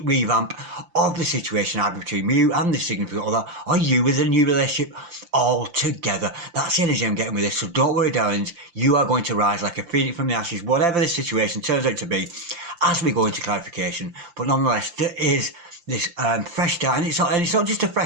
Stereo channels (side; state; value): left; late; 5.8 ms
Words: revamp of the situation either between you and the significant other, or you with a new relationship altogether. That's the energy I'm getting with this, so don't worry, darlings. You are going to rise like a phoenix from the ashes, whatever the situation turns out to be, as we go into clarification. But nonetheless, there is this fresh start, and it's not just a